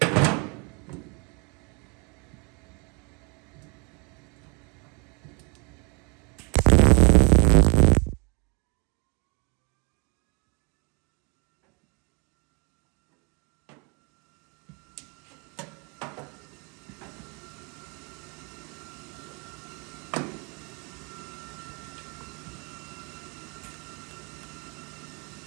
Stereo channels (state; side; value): quieter; left; 31.9 dB